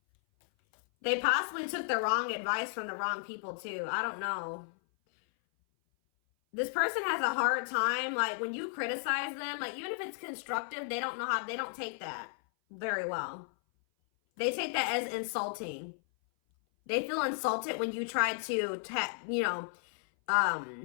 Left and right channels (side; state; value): right; silent; 55 dB below the other